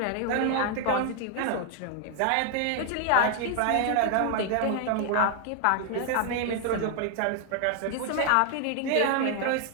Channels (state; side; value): different; both; correlation 0.00